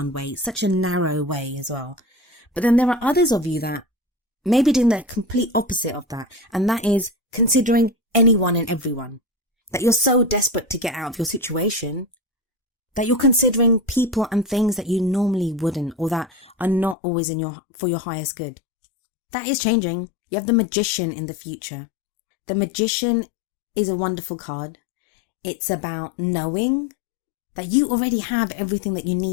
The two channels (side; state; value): right; drops out; at 16.9 s